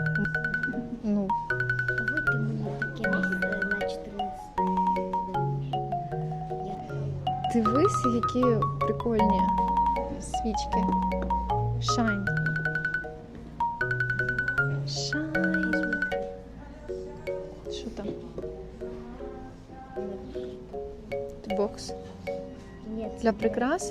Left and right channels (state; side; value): identical; both; correlation 1.00